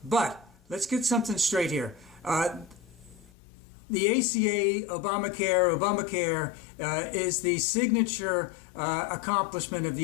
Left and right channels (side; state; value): right; drops out; at 3.3 s